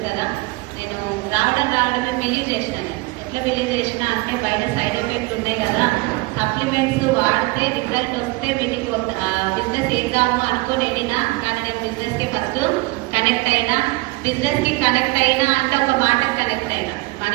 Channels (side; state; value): left; quieter; 23.9 dB